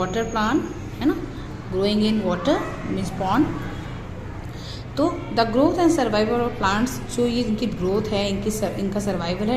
plant, है ना, growing in water means pond. तो the growth and survival of plants, जो ये इनकी ग्रोथ है, इनका सर्वाइवल है,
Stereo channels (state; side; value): identical; both; correlation 1.00